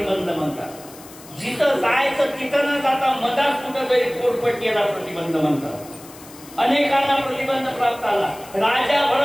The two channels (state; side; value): noise; left; hiss, 19 dB below the sound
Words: म्हणतात. जिथं जायचं तिथं न जाता मधात कुठं तरी पोटपट्टीला प्रतिबंध म्हणतात. अनेकांना प्रतिबंध प्राप्त आला. राजा